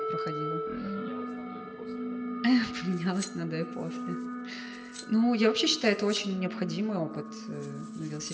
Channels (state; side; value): identical; both; correlation 1.00